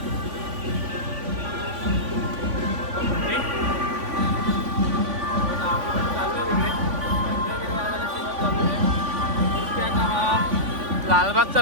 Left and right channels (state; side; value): late; left; 3.5 ms